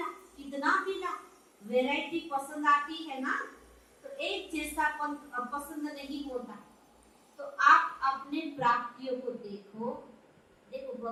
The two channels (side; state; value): both; identical; correlation 1.00